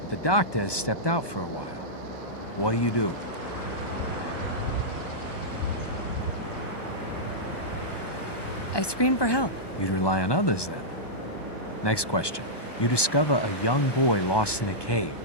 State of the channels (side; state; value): right; late; 1.2 ms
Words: but the doctor has stepped out for a while. What do you do? I scream for help. You'd rely on others then. Next question. You discover a young boy lost in a cave.